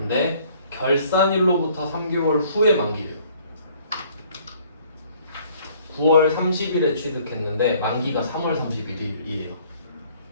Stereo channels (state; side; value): inverted; both; correlation -0.59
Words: 결산일로부터 3개월 후에 만기래요. 9월 30일에 취득했는데 만기가 3월 31일이에요.